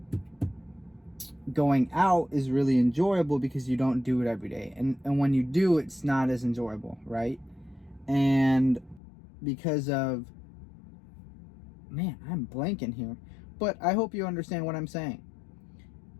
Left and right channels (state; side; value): drops out; right; at 9.0 s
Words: Going out is really enjoyable because you don't do it every day, and when you do, it's not as enjoyable, right? And because of, man, I'm blanking here, but I hope you understand what I'm saying.